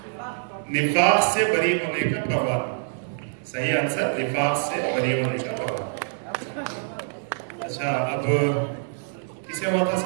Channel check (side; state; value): left; silent; digital silence